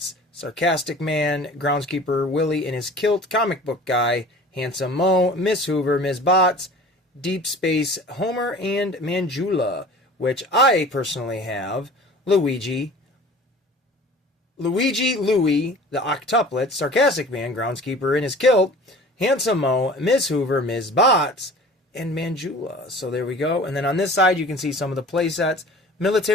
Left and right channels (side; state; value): both; normal; correlation 0.44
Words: Sarcastic Man, Groundskeeper Willie in his kilt, Comic Book Guy, Handsome Mo, Miss Hoover, Ms. Bots, Deep Space Homer, and Manjula, which I personally have. Louie, the Octuplets, Sarcastic Man, Groundskeeper in his kilt, Handsome Mo, Miss Hoover, Ms. Bots, and Manjula. So there we go. And then on this side, you can see some of the play sets.